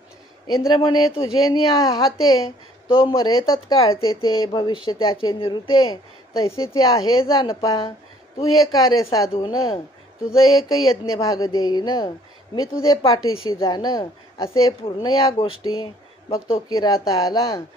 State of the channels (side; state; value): both; normal; correlation 0.59